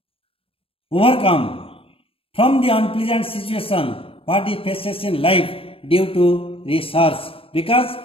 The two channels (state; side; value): late; right; 0.27 ms